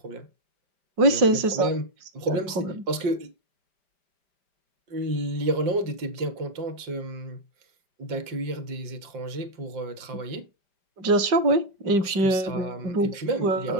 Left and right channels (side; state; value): left; late; 5.1 ms